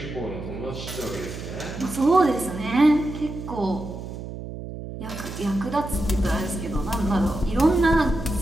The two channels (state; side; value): noise; right; hum, 9 dB below the sound